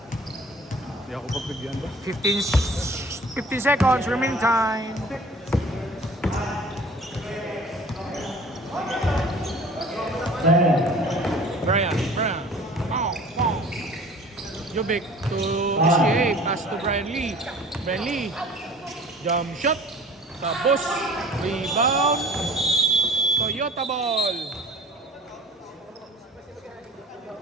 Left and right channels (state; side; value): normal; both; correlation 0.46